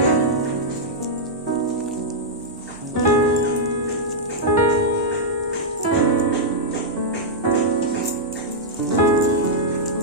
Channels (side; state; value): both; normal; correlation -0.06